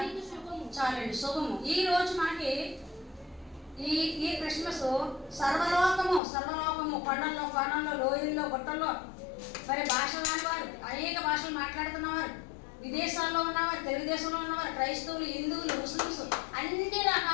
చాలండి, శుభము. ఈ రోజు మనకి ఈ క్రిస్మస్ సర్వలోకము కొండల్లో కోణంలో లోయల్లో గుట్టల్లో మరి భాషలు రానివారు, అనేక భాషలు మాట్లాడుతున్నవారు, విదేశాల్లో ఉన్నవారు, తెలుగుదేశంలో ఉన్నవారు, క్రైస్తవులు, హిందువులు, ముస్లిమ్స్, అన్ని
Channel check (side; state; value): right; drops out; at 6.2 s